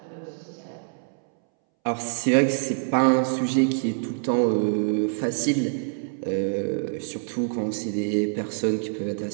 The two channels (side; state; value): left; silent; 61 dB below the other